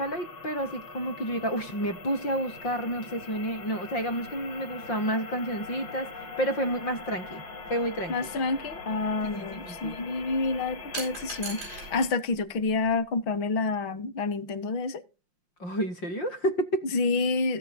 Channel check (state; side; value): late; right; 5.6 ms